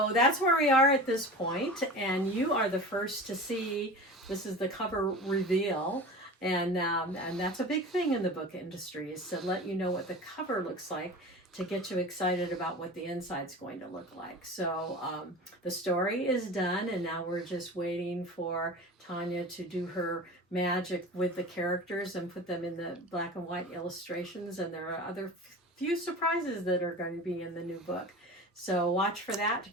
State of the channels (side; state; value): both; normal; correlation 0.34